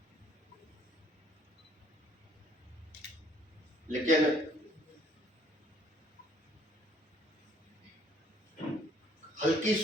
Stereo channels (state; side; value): normal; both; correlation 0.61